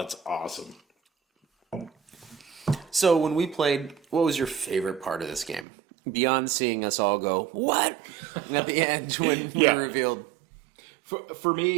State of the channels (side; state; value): left; drops out; at 5.7 s